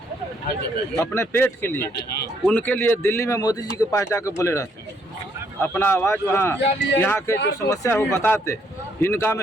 अपने पेट के लिए, उनके लिए दिल्ली में मोदी जी के पास जाकर बोले रहते, अपना आवाज़ वहाँ यहाँ के जो समस्या है वो बताते। इनका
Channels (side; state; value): both; normal; correlation 0.70